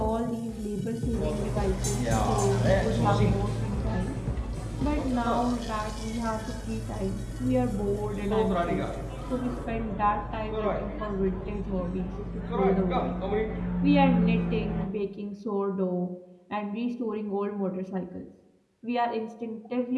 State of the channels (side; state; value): both; identical; correlation 1.00